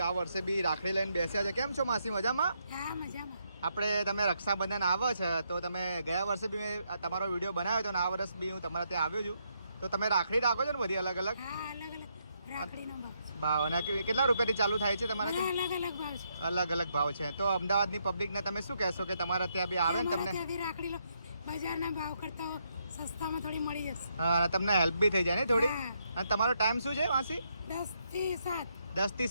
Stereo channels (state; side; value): inverted; both; correlation -0.77